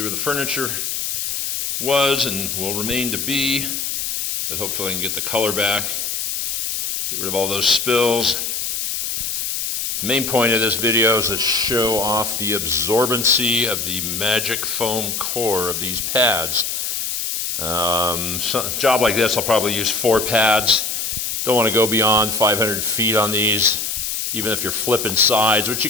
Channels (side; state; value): left; noise; hiss, 2 dB below the sound